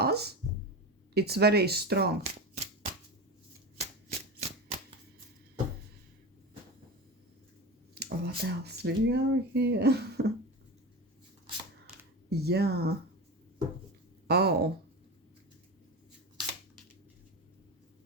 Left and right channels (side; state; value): both; normal; correlation 0.24